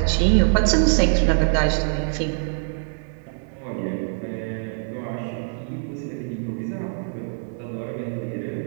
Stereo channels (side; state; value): left; silent; 57 dB below the other